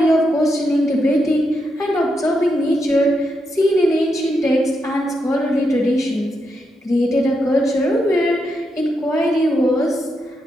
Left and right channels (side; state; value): both; normal; correlation 0.83